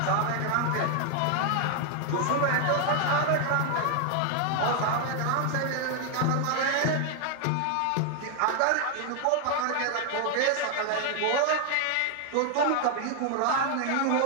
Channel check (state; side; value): different; both; correlation 0.00